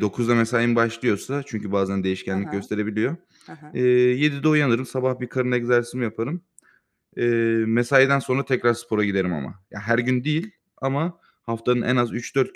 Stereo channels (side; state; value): both; identical; correlation 1.00